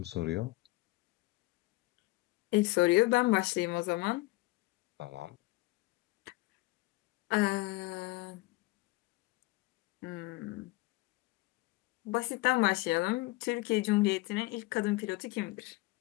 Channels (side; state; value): right; quieter; 21.5 dB